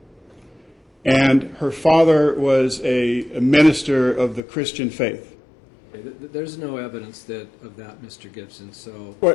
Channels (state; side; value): drops out; right; at 4.4 s